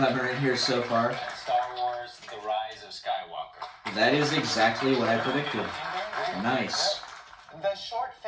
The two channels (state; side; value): identical; both; correlation 1.00